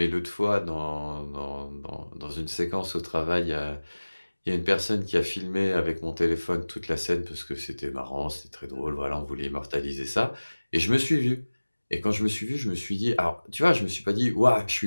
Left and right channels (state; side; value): inverted; both; correlation -1.00